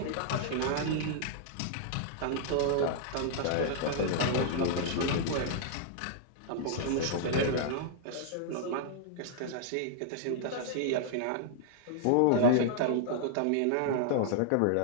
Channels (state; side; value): different; both; correlation -0.01